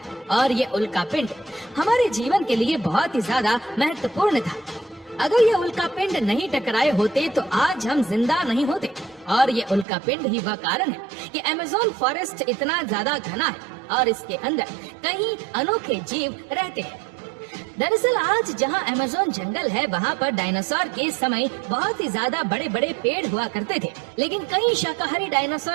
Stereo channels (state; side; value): drops out; left; at 9.9 s